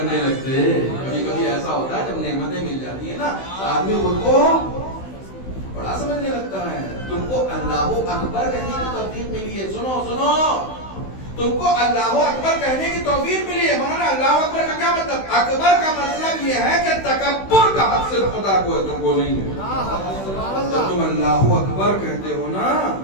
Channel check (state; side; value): late; right; 16 ms